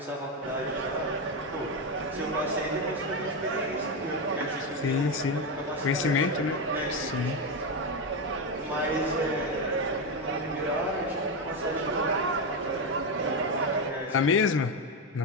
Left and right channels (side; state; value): both; normal; correlation 0.10